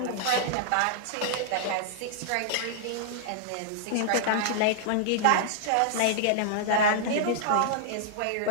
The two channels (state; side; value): different; both; correlation -0.01